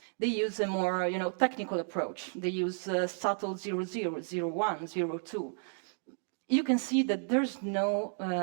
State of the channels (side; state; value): left; silent; 56 dB below the other